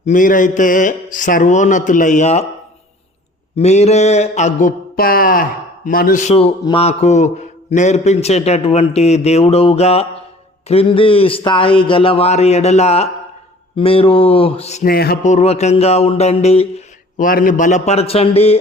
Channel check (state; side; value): normal; both; correlation 0.50